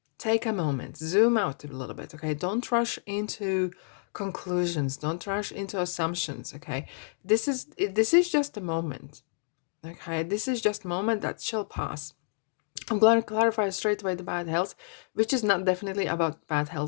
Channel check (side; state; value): right; silent; digital silence